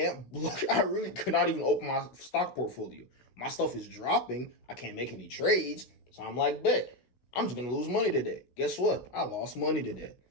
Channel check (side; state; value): right; late; 16 ms